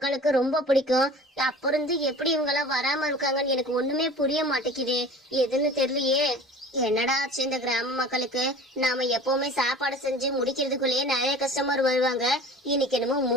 ரொம்ப பிடிக்கும். அப்புறம் எப்படி இவங்க எல்லாம் வராம இருக்காங்கன்னு எனக்கு ஒண்ணுமே புரிய மாட்டேங்குது. எதுன்னு தெரியலையே. என்னடா ஆச்சு இந்த கிராம மக்களுக்கு? நாம எப்பவுமே சாப்பாடு செஞ்சு முடிக்கிறதுக்குள்ளேயே நிறைய கஸ்டமர் வருவாங்க. இன்னைக்கு என்னமோ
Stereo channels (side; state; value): both; normal; correlation 0.42